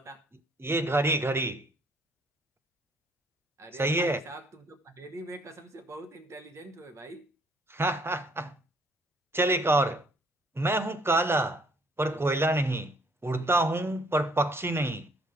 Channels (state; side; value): normal; both; correlation 0.63